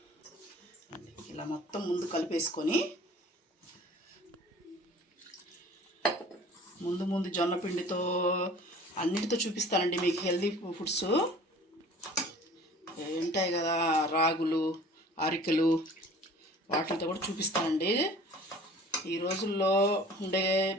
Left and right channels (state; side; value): normal; both; correlation 0.47